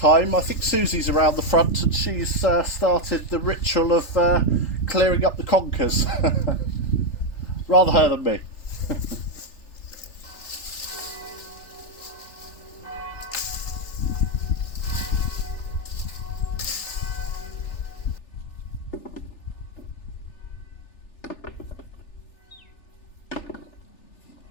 I think Susie's around the front, and she's started the ritual of clearing up the conkers. Rather her than me.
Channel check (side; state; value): right; late; 3.4 ms